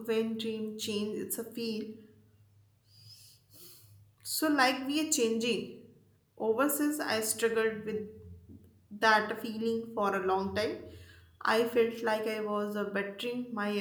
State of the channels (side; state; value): both; identical; correlation 1.00